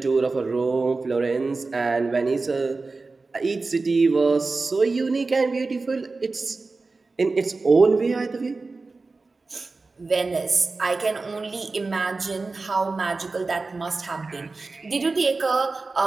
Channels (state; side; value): quieter; left; 3.8 dB